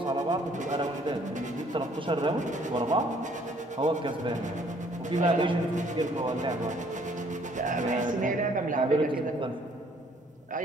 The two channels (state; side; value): normal; both; correlation 0.61